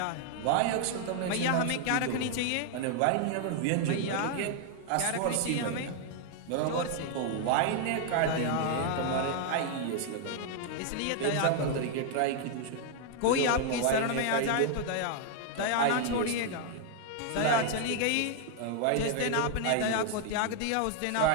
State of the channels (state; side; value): different; both; correlation 0.00